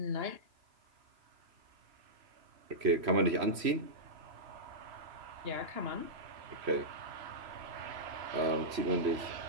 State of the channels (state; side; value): late; left; 3.1 ms